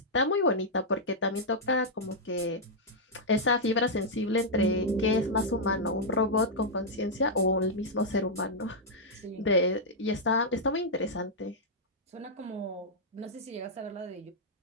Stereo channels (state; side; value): normal; both; correlation -0.06